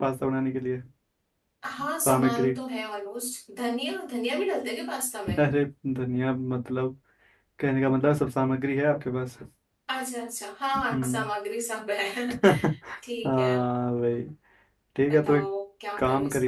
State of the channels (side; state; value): both; identical; correlation 1.00